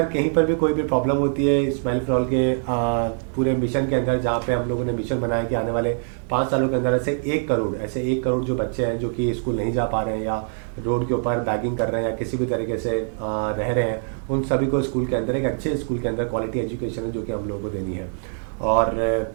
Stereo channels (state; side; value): silent; left; digital silence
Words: कहीं पर भी कोई भी प्रॉब्लम होती है स्माइल फॉर ऑल के पूरे मिशन के अंदर, जहाँ पे हम लोगों ने मिशन बनाया कि आने वाले 5 सालों के अंदर ऐसे 1 करोड़ जो बच्चे हैं जो कि स्कूल नहीं जा पा रहे हैं, या रोड के ऊपर बैगिंग कर रहे हैं, या किसी भी तरीके से रह रहे हैं, उन सभी को स्कूल के अंदर, एक अच्छे स्कूल के अंदर क्वालिटी एजुकेशन है जो कि हम लोगों को देनी है। और